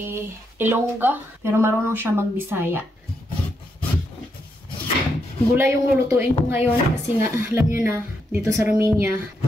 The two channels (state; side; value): normal; both; correlation 0.80